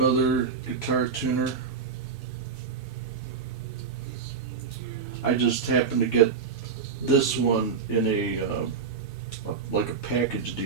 guitar tuner. I just happened to get this one in like a package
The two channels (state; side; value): quieter; left; 5.6 dB